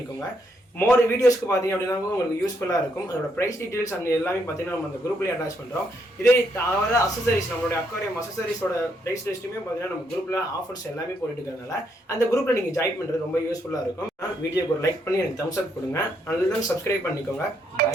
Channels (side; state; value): both; normal; correlation 0.75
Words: மோர் வீடியோஸ்க்கு பார்த்தீங்க அப்படின்னா உங்களுக்கு யூஸ்ஃபுல்லாக இருக்கும். அதோட ப்ரைஸ் டீடைல்ஸ் அந்த எல்லாமே பார்த்தீங்கன்னா நம்ம அந்த குரூப்லேயே அட்டாச் பண்ணுறோம். இதே தவிர அசசரிஸ் நம்மளுடைய அக்வாரியம் அசசரிஸோட ப்ரைஸ் லிஸ்ட்டுமே பார்த்தீங்கன்னா நம்ம குரூப்பில் ஆஃபர்ஸ் எல்லாமே போட்டுட்டு இருக்கிறதுனால அந்த குரூப்பில் நீங்கள் ஜாயின் பண்ணுறது ரொம்ப யூஸ்ஃபுல்லாக இருக்கும். வீடியோக்கு ஒரு லைக் பண்ணி எனக்கு தம்ஸ் அப் கொடுங்க. அதுதான் சப்ஸ்கிரைப் பண்ணிக்கோங்க. Bye,